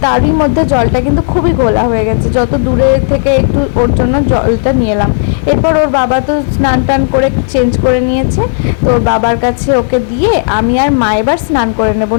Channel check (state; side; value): silent; right; digital silence